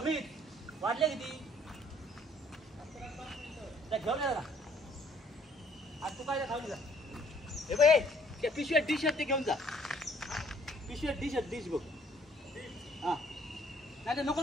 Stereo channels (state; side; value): normal; both; correlation 0.62